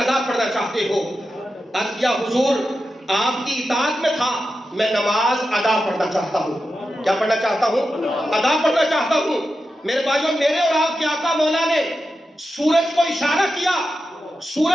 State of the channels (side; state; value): both; normal; correlation 0.90